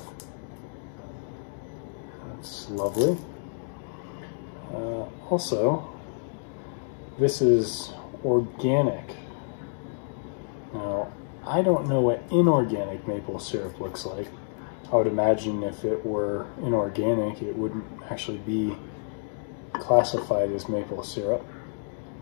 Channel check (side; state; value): right; silent; digital silence